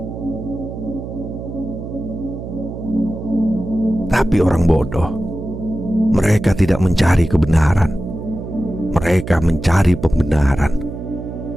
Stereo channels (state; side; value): noise; right; hum, 9 dB below the sound